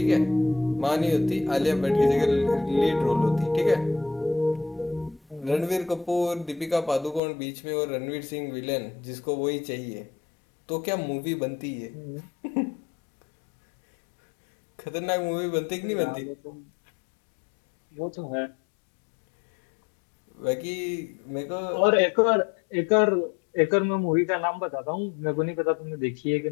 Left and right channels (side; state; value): right; drops out; at 7.2 s